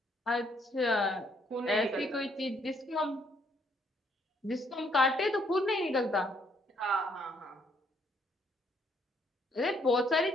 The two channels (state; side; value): normal; both; correlation 0.69